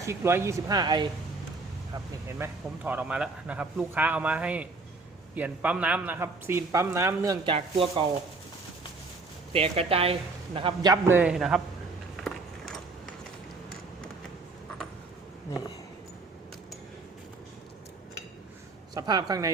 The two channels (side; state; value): left; quieter; 3.7 dB